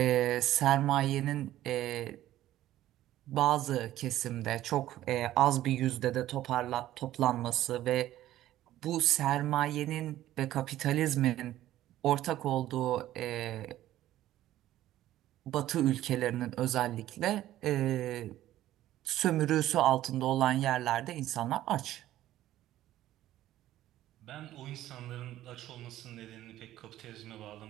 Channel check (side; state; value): left; quieter; 13.8 dB